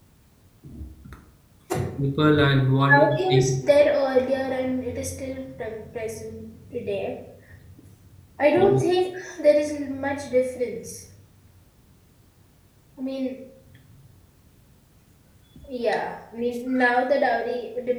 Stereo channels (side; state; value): both; identical; correlation 1.00